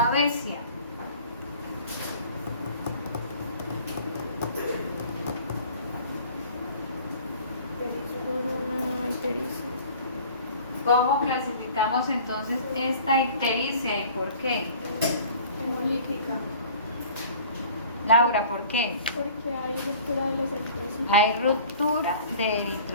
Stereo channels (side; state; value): both; inverted; correlation -0.47